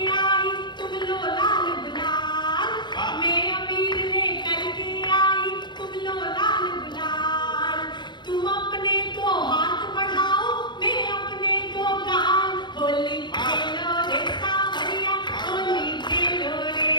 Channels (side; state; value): right; late; 0.22 ms